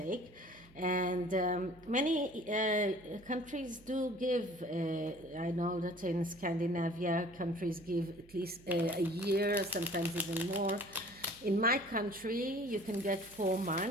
And many countries do give, I know that in Scandinavia, countries give at least a year, sometimes even more. In my country, you can get 4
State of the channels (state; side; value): noise; right; hum, 24 dB below the sound